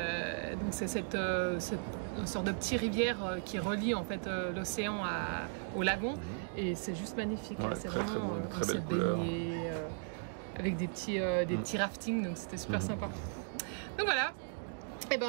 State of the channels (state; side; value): silent; left; digital silence